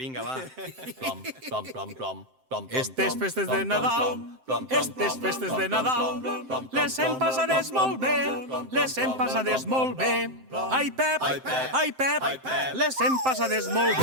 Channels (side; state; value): left; late; 7.7 ms